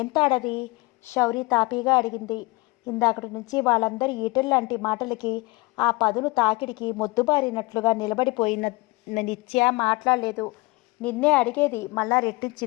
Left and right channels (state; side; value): quieter; right; 23.6 dB